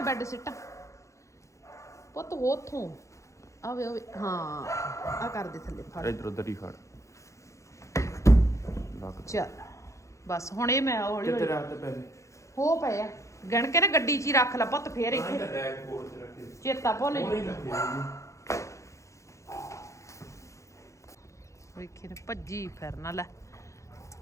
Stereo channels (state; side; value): late; right; 0.15 ms